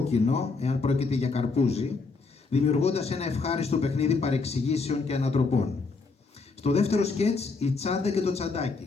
εάν πρόκειται για καρπούζι, δημιουργώντας ένα ευχάριστο παιχνίδι παρεξηγήσεων και ανατροπών. Στο δεύτερο σκέτς, η τσάντα και το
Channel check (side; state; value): right; quieter; 4.1 dB